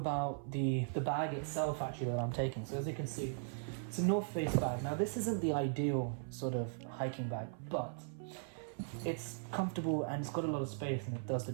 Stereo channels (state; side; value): silent; left; 52 dB below the other